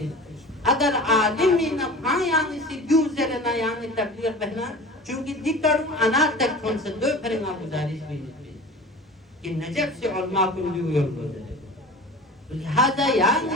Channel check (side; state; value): both; normal; correlation 0.38